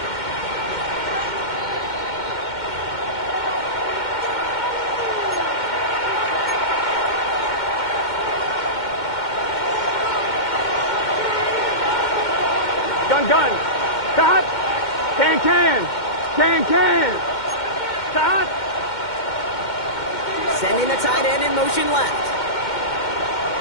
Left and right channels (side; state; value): right; late; 2.1 ms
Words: Gun. Stop. Can. Stop. Sending the tight end in motion left.